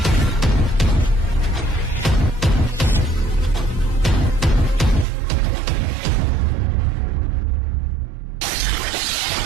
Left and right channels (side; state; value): left; drops out; at 5.1 s